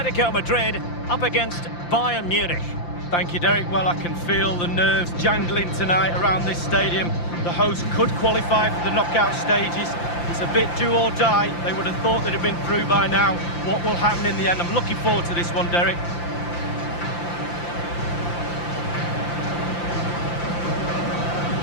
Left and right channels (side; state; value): right; late; 5.8 ms